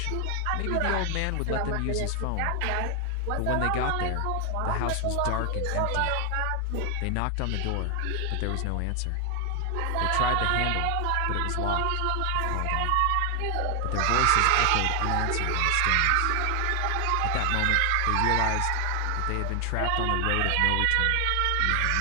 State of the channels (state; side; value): different; both; correlation 0.00